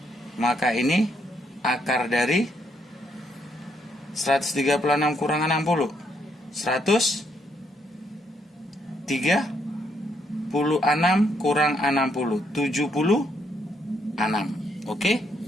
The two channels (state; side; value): normal; both; correlation 0.74